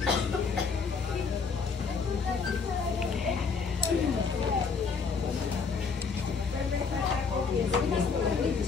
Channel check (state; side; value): quieter; right; 5.2 dB